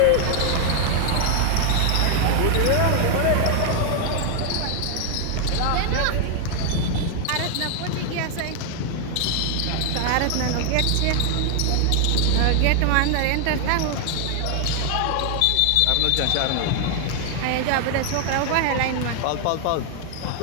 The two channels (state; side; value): different; both; correlation 0.00